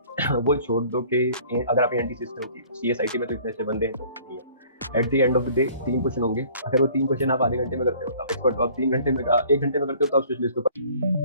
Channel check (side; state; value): both; inverted; correlation -0.53